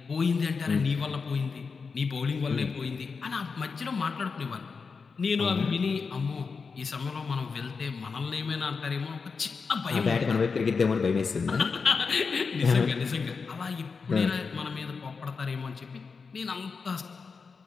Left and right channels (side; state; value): right; quieter; 5.0 dB